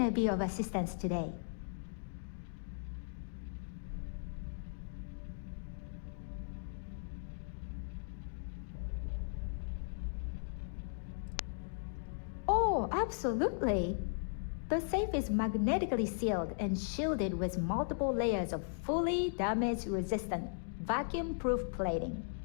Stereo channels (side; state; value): right; silent; digital silence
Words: be of assistance today? Oh, absolutely. The safe is magnetically sealed and shielded with multiple layers of fully damage-resistant, vacuum-proof plating.